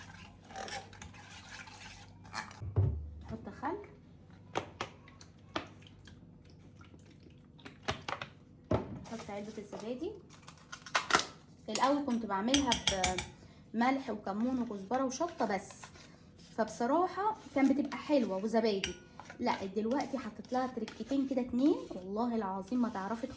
نحط خل، نحط علبه الزبادي. الاول كنت بعملها بملح وكمون وكزبره وشطه بس، فبصراحه كان بتبقى حلوه وزبادي. لا دلوقتي حطيت لها تركتين كده 2 والله العظيم ما تعرفي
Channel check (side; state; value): both; identical; correlation 1.00